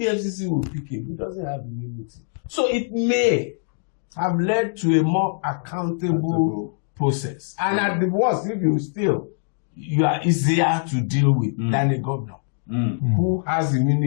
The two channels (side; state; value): right; silent; digital silence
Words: will pick him. He doesn't have immunity. So it may have led to a more accountable process. And at the worst, if you steal, you are easier to deal with than a governor who has